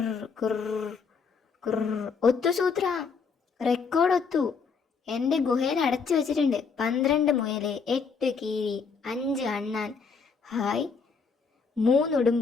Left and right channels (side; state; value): right; quieter; 5.3 dB